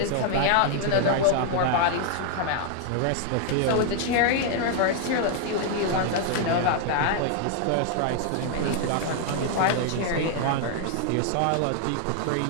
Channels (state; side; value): different; both; correlation 0.00